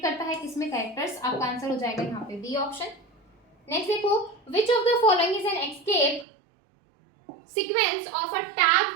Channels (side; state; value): left; drops out; at 6.2 s